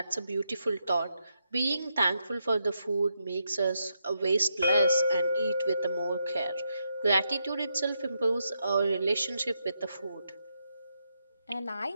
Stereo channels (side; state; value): both; inverted; correlation -0.82